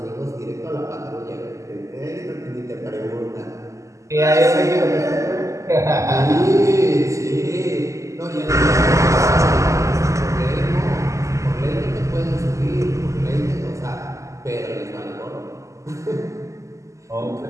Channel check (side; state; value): left; late; 0.15 ms